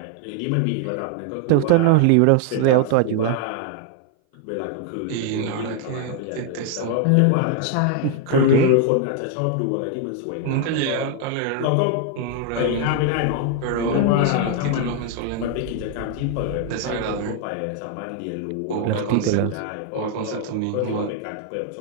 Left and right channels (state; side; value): different; both; correlation 0.00